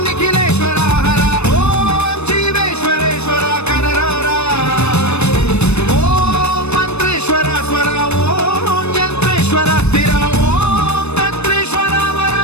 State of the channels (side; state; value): right; late; 0.81 ms